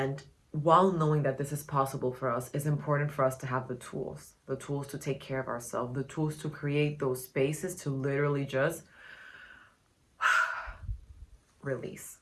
while knowing that this is possible for us, it's important for us to have the tools to take care of ourselves, the tools to create those spaces to literally just release.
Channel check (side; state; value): both; identical; correlation 1.00